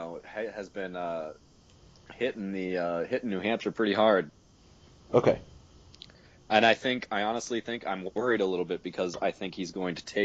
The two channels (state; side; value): identical; both; correlation 1.00